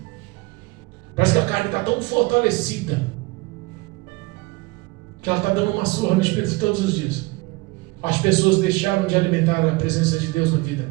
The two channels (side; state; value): left; quieter; 23.7 dB